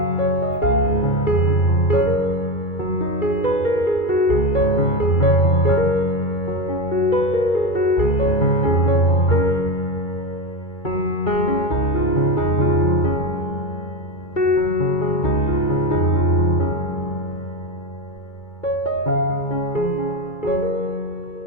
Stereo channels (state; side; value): late; right; 2.3 ms